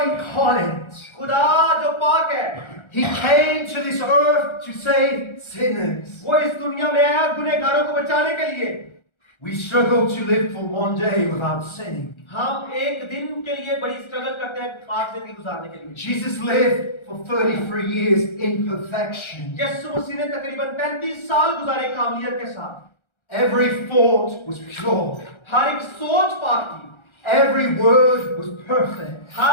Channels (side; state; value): right; late; 1.3 ms